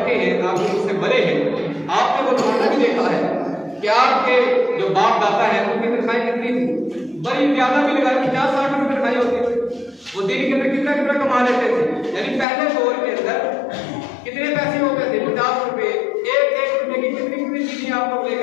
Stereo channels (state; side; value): drops out; right; at 12.5 s